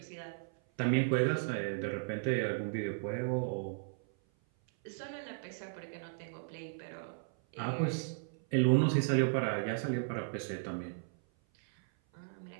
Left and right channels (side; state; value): left; silent; 54 dB below the other